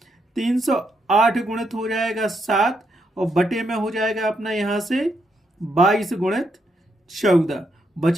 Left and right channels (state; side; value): normal; both; correlation 0.79